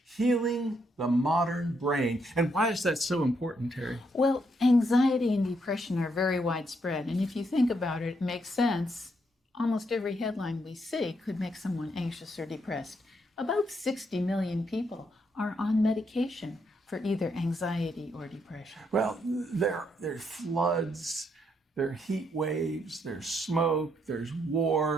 Healing the Modern Brain. And why is that so important, Terry? Well, anxiety and depression are very widespread, and if you think about it, it makes sense. Almost every headline we see could make someone anxious or depressed. About 60 million people are on medication for either anxiety or depression. Well, there's floods, there are heat waves, there's smoke, there's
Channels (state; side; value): normal; both; correlation 0.76